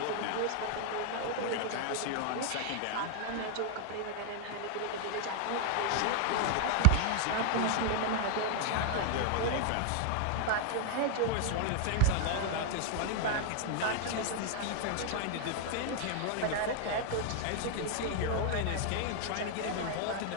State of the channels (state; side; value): different; both; correlation 0.00